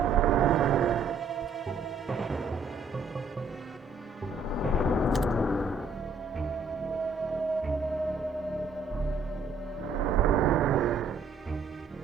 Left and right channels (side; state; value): left; quieter; 4.3 dB